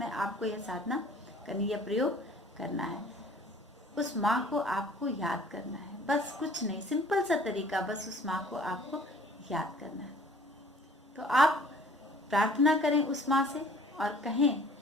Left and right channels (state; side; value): normal; both; correlation 0.52